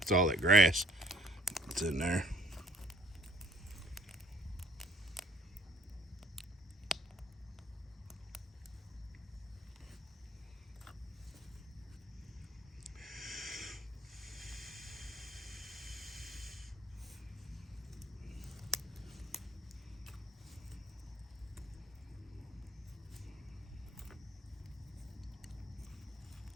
It's all that grass that's in there.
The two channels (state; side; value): normal; both; correlation 0.58